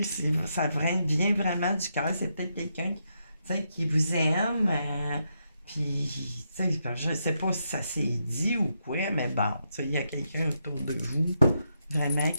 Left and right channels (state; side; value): inverted; both; correlation -0.81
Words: vient vraiment du cœur. C'est peut-être quelqu'un qui vous aime. Puis, tu sais, je sais pas si ça s'est dit ou quoi, mais bon, tu sais, il y a quelqu'un autour de vous, vraiment,